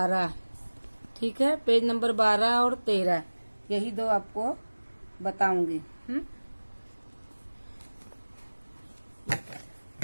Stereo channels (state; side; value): inverted; both; correlation -1.00